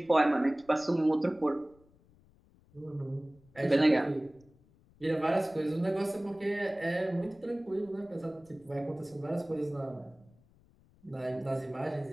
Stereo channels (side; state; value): left; noise; rumble, 29 dB below the sound